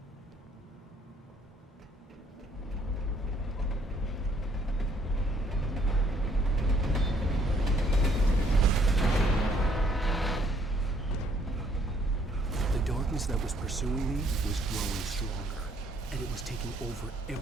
That was pursuing me was growing stronger, and it was taking over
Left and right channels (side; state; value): both; normal; correlation 0.65